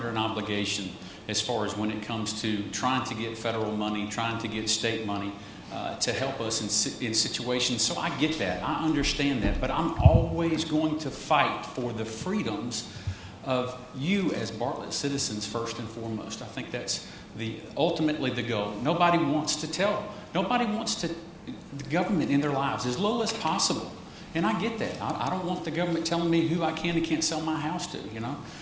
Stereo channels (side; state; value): both; identical; correlation 1.00